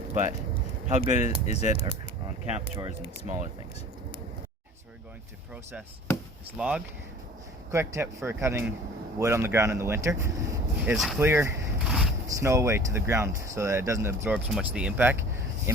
but how good is it on camp chores and smaller things? So we're going to process this log. Quick tip for cutting wood on the ground in the winter is clear snow away to the ground so that it doesn't absorb so much of the impact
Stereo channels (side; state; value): both; normal; correlation 0.45